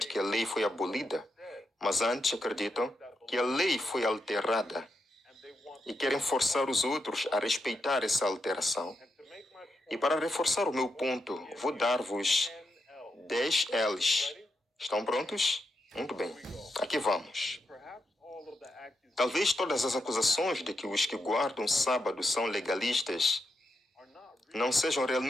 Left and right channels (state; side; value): normal; both; correlation 0.84